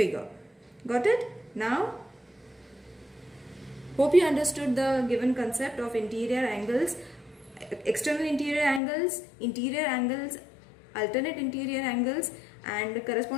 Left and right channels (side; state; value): right; drops out; at 8.8 s